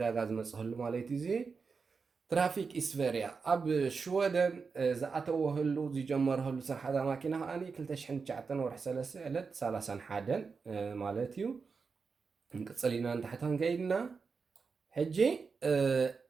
ዝመፅህሉ ማለት እዩ እዚ ትራፊክ ኢስቨርያ ኣብ ሽወደን ዝኣተወህሉ ዝጀመረህሉ ስራሕታ ማኪና ከዓኒ 2009 ወርሒ 3 ዕለት 31 ማለት እዩ ንቅፅል ኢና ንታሕታን ከይድና ሕጂ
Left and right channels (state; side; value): quieter; left; 5.0 dB